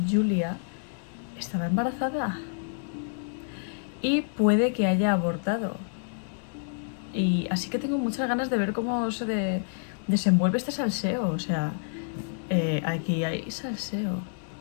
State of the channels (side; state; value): right; silent; 59 dB below the other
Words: Julia estaba embarazada y puede que haya abortado. Y así que tengo muchas ganas de ver cómo se desenvuelve este salseo. O sea, aquí hay salseo.